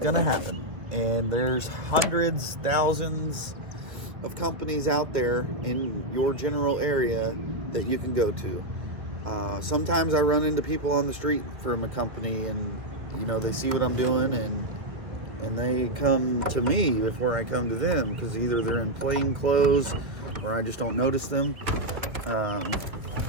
to happen. And there's hundreds, thousands of companies out there in your general area that you can go to. Sometimes I run into people on the street from a company, and you know, they see what I'm doing, and they come to me before I come to them, because either they're in plain clothes or I just don't notice them.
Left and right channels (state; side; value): late; left; 2.3 ms